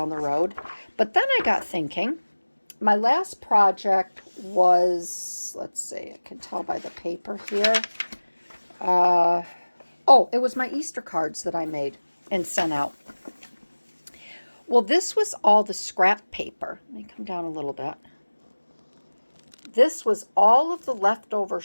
the road. But then I got thinking, my last project was, let's see, I can tell by the paper here. It was my Easter cards that I made and sent out. Well, this was all the scrap paper. Let me come down a little bit. This was all of the leftover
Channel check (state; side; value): inverted; both; correlation -1.00